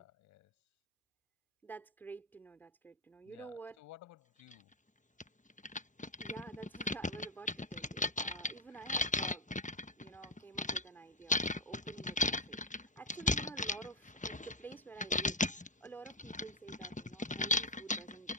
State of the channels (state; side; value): normal; both; correlation 0.04